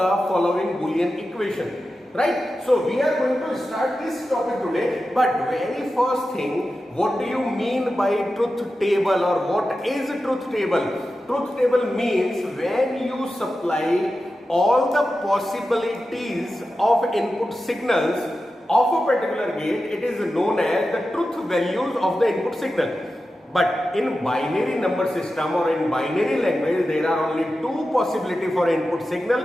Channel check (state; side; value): normal; both; correlation 0.92